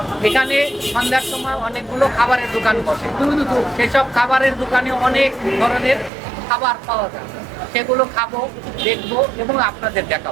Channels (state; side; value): drops out; left; at 6.1 s